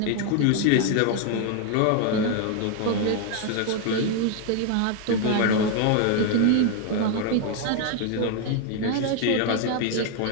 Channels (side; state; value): both; different; correlation 0.00